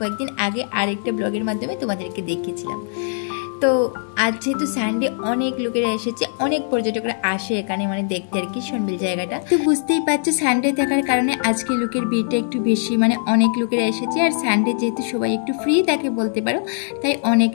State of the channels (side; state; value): right; silent; digital silence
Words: আগে আরেকটা ব্লগের মাধ্যমে তোমাদেরকে দেখিয়েছিলাম। তো আজ যেহেতু সানডে, অনেক লোকেরা এসেছে, অনেক পর্যটকরা আসে এখানে মানে দেখতে আর কি শোনবিল জায়গাটা। তো বুঝতেই পারছো, সানডে থাকার কারণে আজকে লোকের ভিড়টা একটু বেশি, মানে অনেক লোকেরা এসেছে। আর সানডে যেহেতু সবাই একটু ফ্রি থাকে বলতে পারো, তাই অনেক